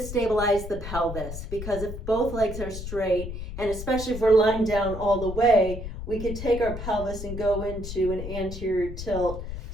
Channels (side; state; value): left; noise; rumble, 8 dB below the sound